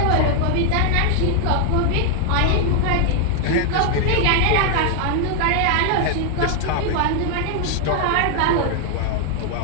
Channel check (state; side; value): different; both; correlation 0.00